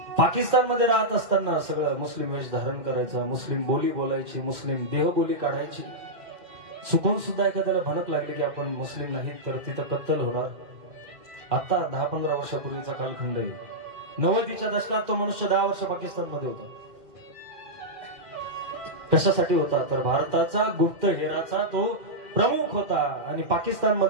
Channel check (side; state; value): left; late; 2.4 ms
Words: पाकिस्तानमध्ये राहत असताना सगळं मुस्लिम वेश धारण करायचा, मुस्लिम बोली बोलायची, मुस्लिम देहबोली काढायची. चुकून सुद्धा एखाद्याला भनक लागली की आपण मुस्लिम नाहीत तर तिथं कत्तल होणार. आता 10-15 वर्षापूर्वीचा कालखंड आहे. 90च्या दशकात तो मनुष्य 10 वर्ष पाकिस्तानमध्ये होता. कशासाठी होता तर भारताचा गुप्तहेराचा तो प्रमुख होता आणि